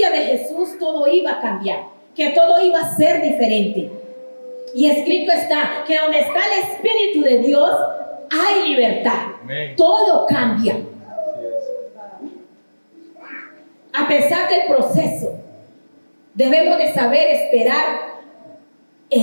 de Jesús todo iba a cambiar, que todo iba a ser diferente. Y escrito está que donde está el Espíritu de Dios hay libertad. Amén. Todo cambia. Así es. A pesar del proceso, debemos de saber esperar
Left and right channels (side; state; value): both; inverted; correlation -1.00